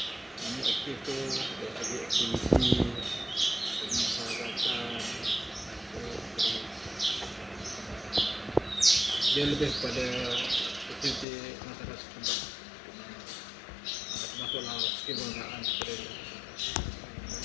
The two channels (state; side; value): drops out; right; at 11.2 s